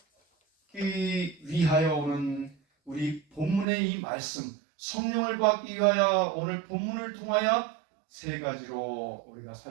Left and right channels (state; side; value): drops out; left; at 3.7 s